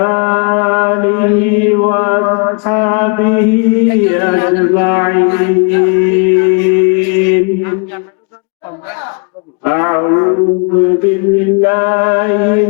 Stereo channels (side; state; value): right; quieter; 33.8 dB